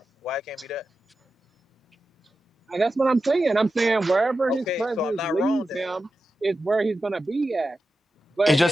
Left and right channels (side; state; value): both; normal; correlation 0.91